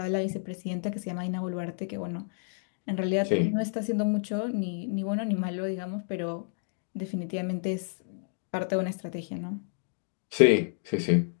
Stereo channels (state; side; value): silent; right; digital silence